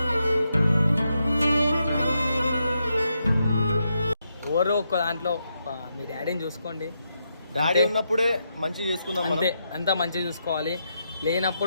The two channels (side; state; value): both; inverted; correlation -0.82